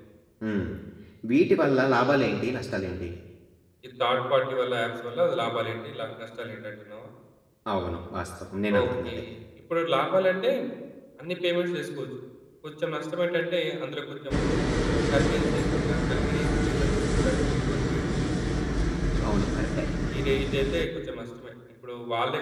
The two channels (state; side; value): identical; both; correlation 1.00